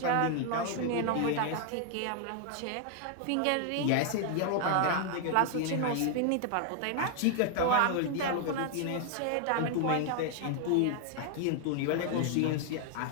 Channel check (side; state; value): both; different; correlation 0.00